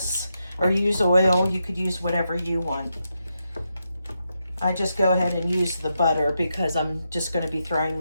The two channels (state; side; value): inverted; both; correlation -0.85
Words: or use oil. You could use whatever you want. I just go ahead and use the butter because I'm just going to be throwing